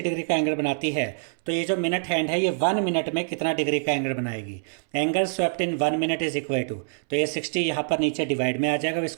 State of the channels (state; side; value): silent; left; 61 dB below the other